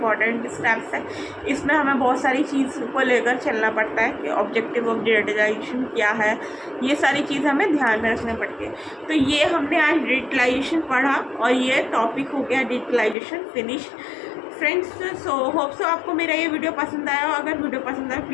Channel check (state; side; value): drops out; right; at 13.2 s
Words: स्टेप्स है। इसमें हमें बहुत सारी चीज़ को लेकर चलना पड़ता है कि ऑब्जेक्टिव ऑफ डिजिटलाइजेशन क्या है, ये सारी चीज़ हमें ध्यान में रखना पड़ती है। तो ये हमने आज डिजिटलाइजेशन पढ़ा और ये टॉपिक हो गया digitalization finish. Friends, so hope so आपको मेरा ये वीडियो पसंद आया हो। अगर वीडियो पसंद आए